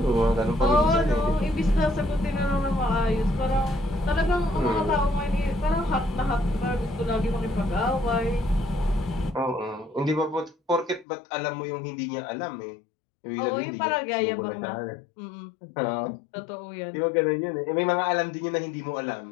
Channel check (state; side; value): drops out; right; at 11.1 s